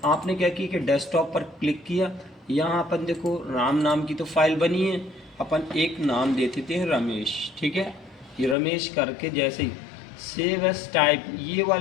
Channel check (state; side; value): drops out; right; at 8.6 s